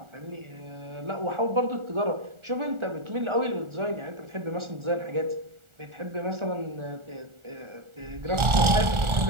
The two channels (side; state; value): left; late; 1.4 ms